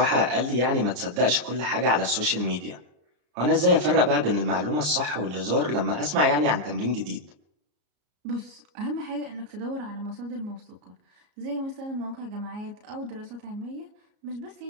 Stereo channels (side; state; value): left; late; 33 ms